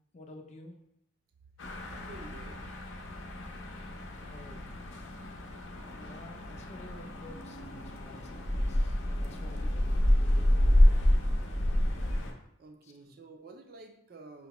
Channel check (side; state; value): both; normal; correlation 0.98